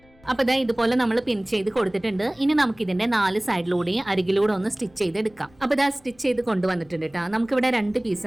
അപ്പൊ ഇതാ ഇതുപോലെ നമ്മൾ പിൻ ചെയ്ത് കൊടുത്തിട്ടുണ്ട്. ഇനി നമുക്ക് ഇതിന്റെ 4 സൈഡിലൂടെയും അരികിലൂടെ ഒന്ന് സ്റ്റിച്ച് ചെയ്തെടുക്കാം. അപ്പൊ ഇതാ സ്റ്റിച്ച് ചെയ്ത് കൊണ്ടുവന്നിട്ടുണ്ട് കേട്ടോ. നമുക്കിവിടെ 2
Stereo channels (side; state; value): left; noise; rumble, 29 dB below the sound